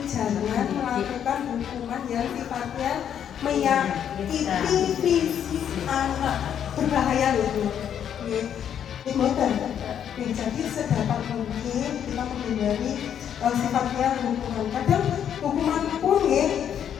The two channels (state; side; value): quieter; right; 9.1 dB